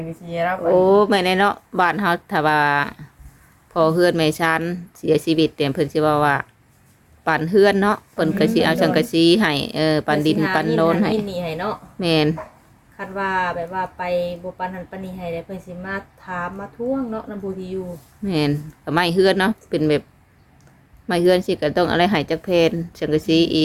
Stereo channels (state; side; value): identical; both; correlation 1.00